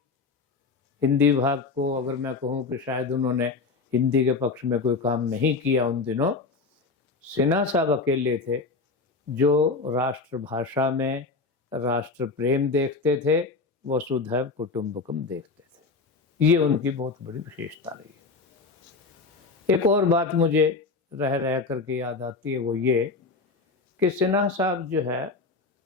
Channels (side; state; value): right; quieter; 4.1 dB